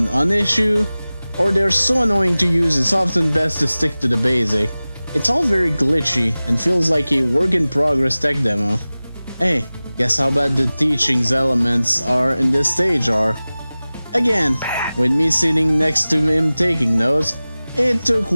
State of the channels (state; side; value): inverted; both; correlation -0.98